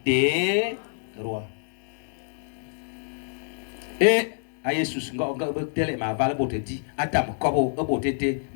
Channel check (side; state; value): right; silent; digital silence